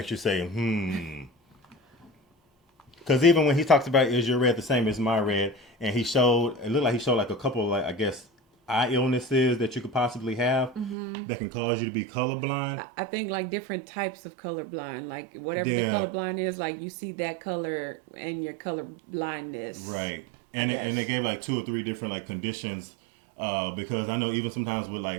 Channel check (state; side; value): drops out; left; at 11.0 s